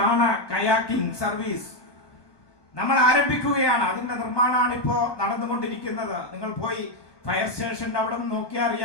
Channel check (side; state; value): right; late; 1.2 ms